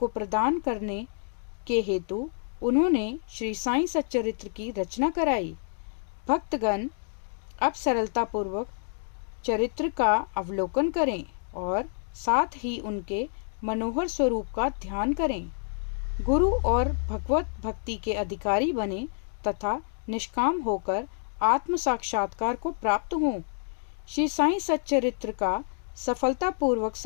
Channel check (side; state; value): right; silent; digital silence